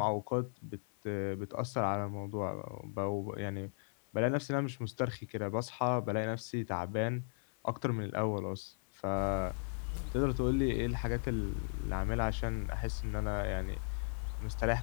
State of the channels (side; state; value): right; silent; 53 dB below the other